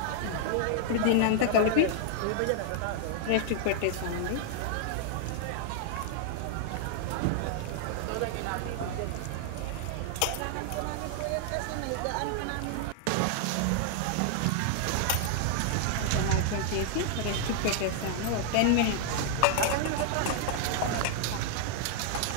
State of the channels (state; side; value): different; both; correlation -0.01